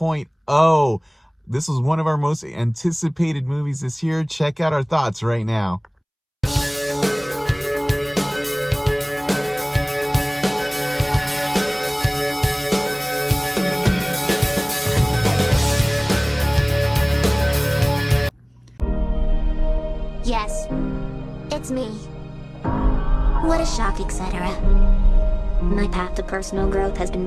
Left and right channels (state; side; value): identical; both; correlation 1.00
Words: This was one of our most anticipated movies this year. Check out our thoughts right now. Yes, it's me. What a shock, etc. My path to personal growth has been